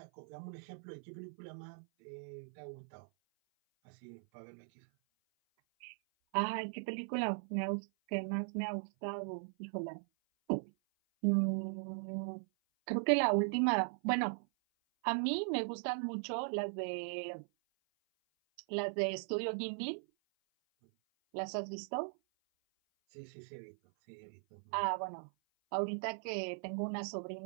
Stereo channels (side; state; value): left; silent; 52 dB below the other